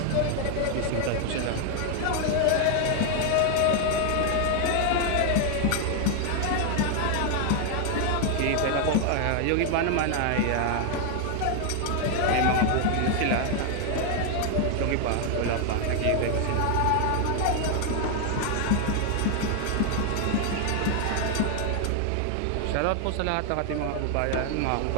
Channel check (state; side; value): different; both; correlation 0.00